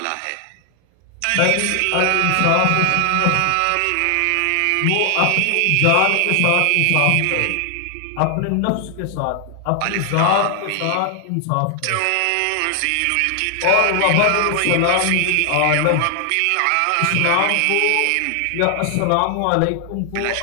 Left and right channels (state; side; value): different; both; correlation 0.00